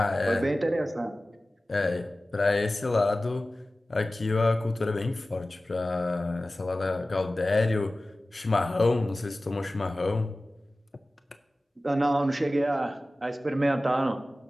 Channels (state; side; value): normal; both; correlation 0.96